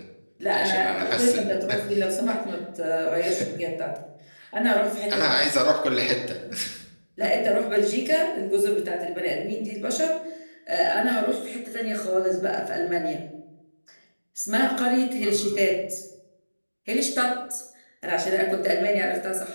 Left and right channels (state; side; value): inverted; both; correlation -1.00